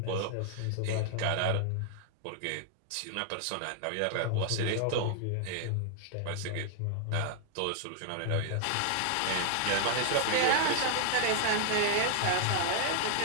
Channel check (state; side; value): different; both; correlation 0.00